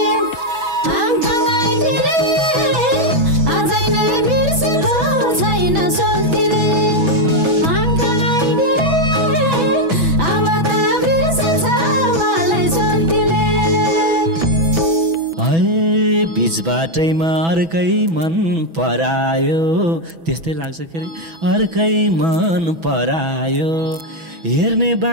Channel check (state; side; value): late; left; 6.1 ms